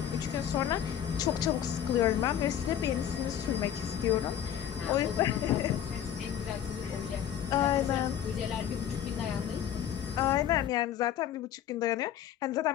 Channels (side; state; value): right; quieter; 10.1 dB